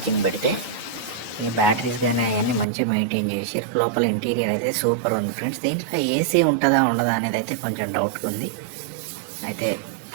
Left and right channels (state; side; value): drops out; left; at 2.7 s